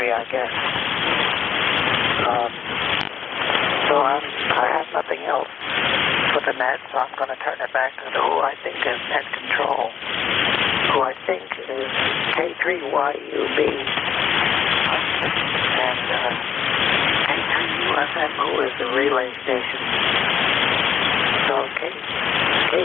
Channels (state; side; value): quieter; right; 8.0 dB